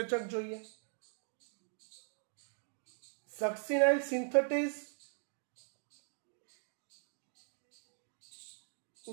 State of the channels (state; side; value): silent; left; 51 dB below the other